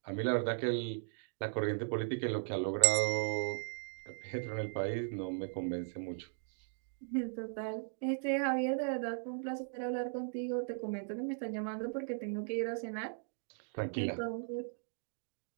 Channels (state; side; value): silent; left; digital silence